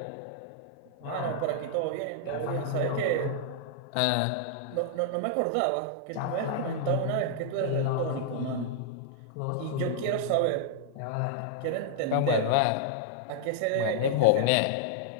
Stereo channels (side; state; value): both; different; correlation -0.01